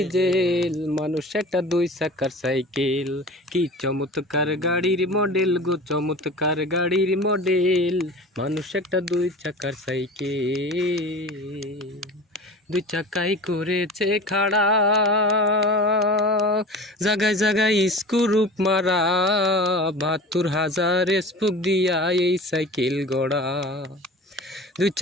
মানুষ একটা দুই চাকার সাইকেল, কি চমৎকার গাড়ির মডেল গো, চমৎকার গাড়ির মডেল। মানুষ একটা দুই চাকার সাইকেল, দুই চাকাই করেছে খাড়া, জাগায় জাগায় স্ক্রুপ মারা, ৭২,০০০ স্পুক দিয়া এই সাইকেল গড়া। দুই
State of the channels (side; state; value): both; normal; correlation 0.37